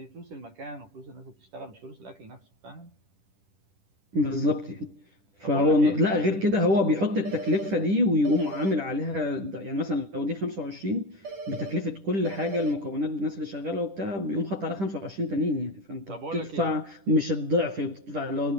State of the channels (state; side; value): late; left; 10 ms